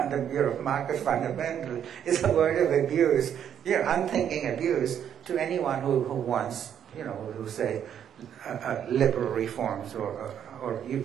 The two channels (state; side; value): quieter; left; 9.2 dB